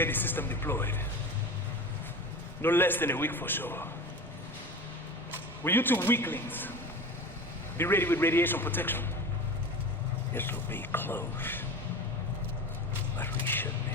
the system deployed. No less than a week for sure. Will you two weaklings be ready with radiation protection? This will be close, but we should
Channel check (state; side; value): normal; both; correlation 0.32